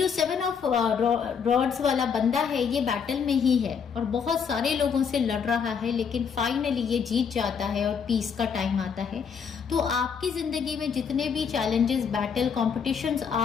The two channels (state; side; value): quieter; right; 6.6 dB